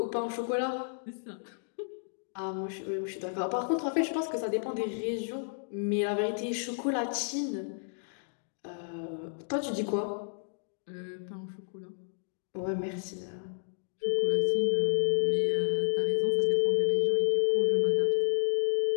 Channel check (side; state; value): right; silent; digital silence